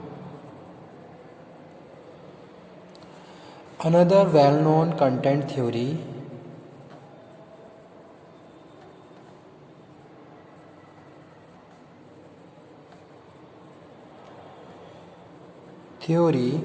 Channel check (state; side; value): identical; both; correlation 1.00